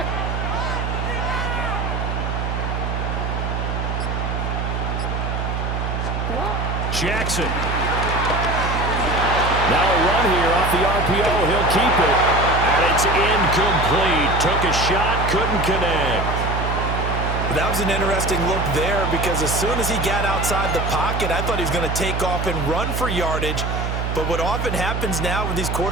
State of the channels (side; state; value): right; noise; hum, 2 dB below the sound